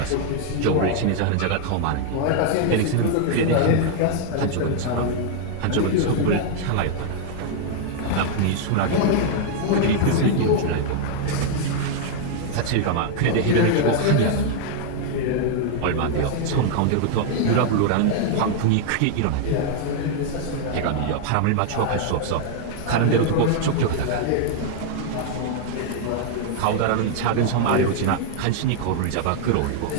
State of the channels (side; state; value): both; different; correlation 0.00